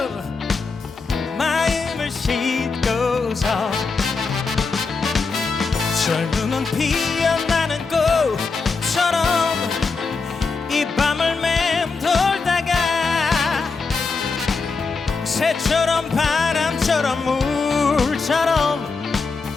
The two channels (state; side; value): quieter; right; 4.5 dB